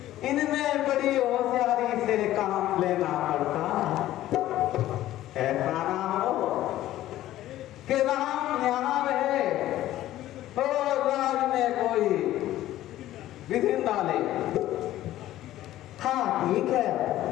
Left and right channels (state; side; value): quieter; right; 14.2 dB